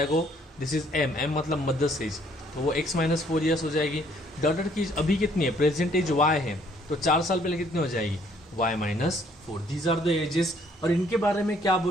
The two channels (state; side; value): normal; both; correlation 0.63